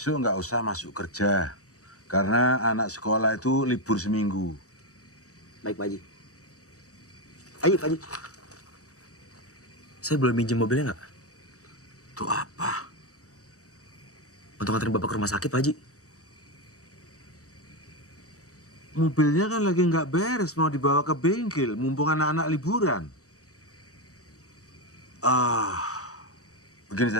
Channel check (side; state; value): right; late; 0.65 ms